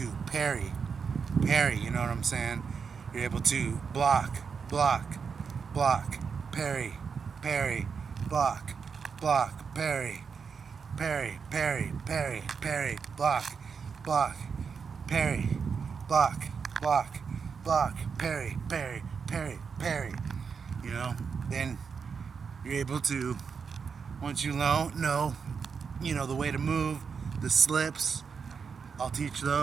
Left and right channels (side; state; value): left; quieter; 5.9 dB